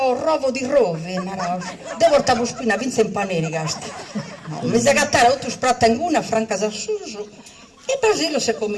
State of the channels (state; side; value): identical; both; correlation 1.00